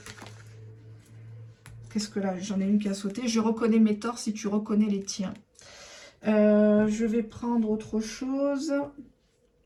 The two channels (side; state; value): both; identical; correlation 1.00